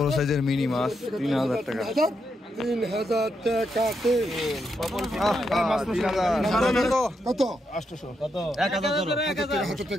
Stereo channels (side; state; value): both; normal; correlation 0.82